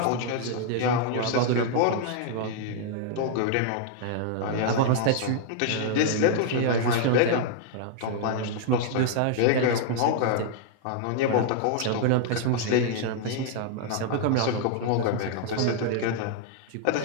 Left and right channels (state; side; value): different; both; correlation -0.01